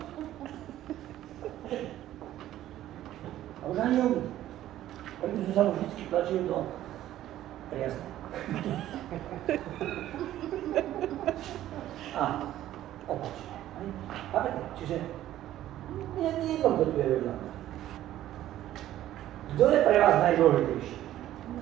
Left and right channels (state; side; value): quieter; left; 13.2 dB